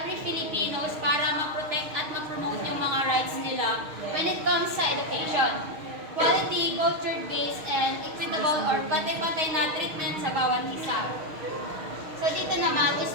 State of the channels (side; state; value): left; late; 6.4 ms